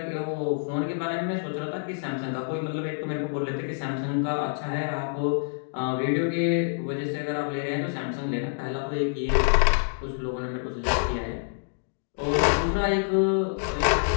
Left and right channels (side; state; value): right; silent; digital silence